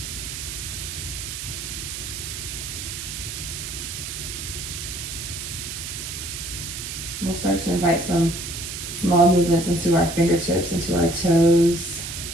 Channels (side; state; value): right; noise; hiss, 7 dB below the sound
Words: We'll start to invite some small movements into our fingertips, into our toes.